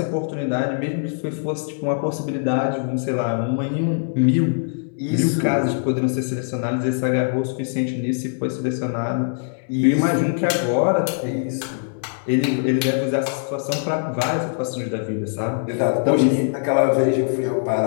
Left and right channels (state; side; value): silent; right; digital silence